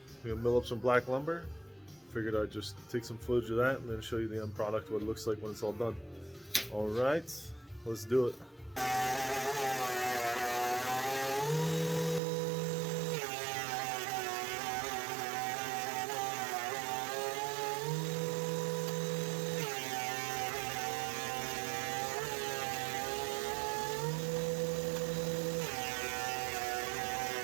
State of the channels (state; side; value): drops out; left; at 12.2 s